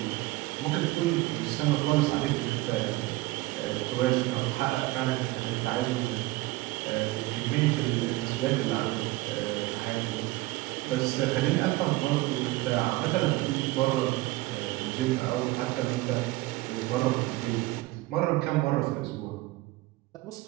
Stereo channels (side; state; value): left; quieter; 19.7 dB